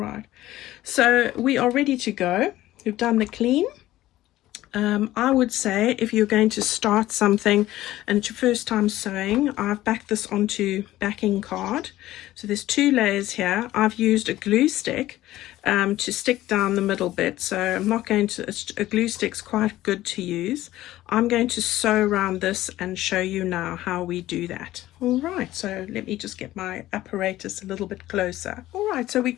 so we are ready to go. We've done the clean. I would say if you're going to start something and it's your first time sewing, I've backed this onto backing card. So there's 2 layers here. I've used a glue stick to stick down the middle bit. So I'm not going to, a glue stick's quite good to use. I'm going to sew around this and show you now how we do that. All right, so let me just get my apparatus a little bit closer. All right, so we're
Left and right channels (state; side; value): quieter; right; 15.3 dB